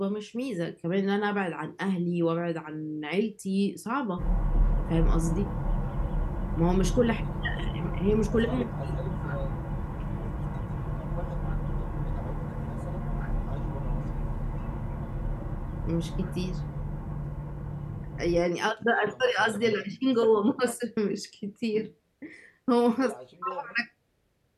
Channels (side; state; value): both; identical; correlation 1.00